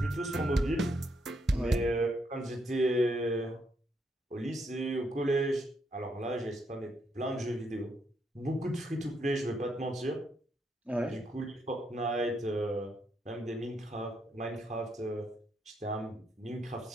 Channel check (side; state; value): both; normal; correlation 0.77